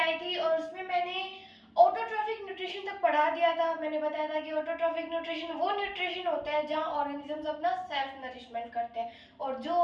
थी और उसमें मैंने ऑटोट्रॉफिक न्यूट्रिशन तक पढ़ा दिया था। मैंने बताया था कि ऑटोट्रॉफिक न्यूट्रिशन वो न्यूट्रिशन होता है जहां ऑर्गेनिजम्स अपना सेल्फ नरिशमेंट करते हैं, और जो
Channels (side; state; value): both; identical; correlation 1.00